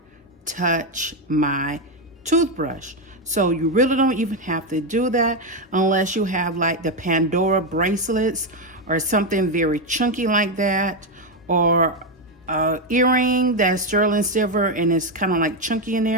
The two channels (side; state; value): both; normal; correlation 0.07